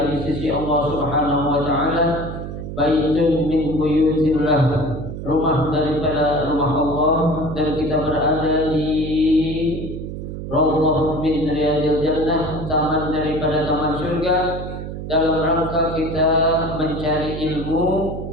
di sisi Allah Subhanahu wa taala. Baitun min buyutillah, rumah daripada rumah Allah, dan kita berada di Raudhah min riyadil jannah, taman daripada taman surga, dalam rangka kita mencari ilmu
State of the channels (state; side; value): noise; right; hum, 8 dB below the sound